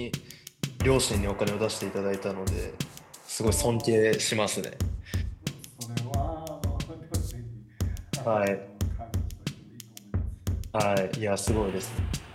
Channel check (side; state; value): both; identical; correlation 1.00